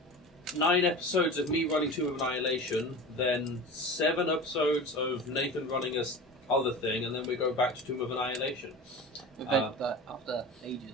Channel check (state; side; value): normal; both; correlation 0.33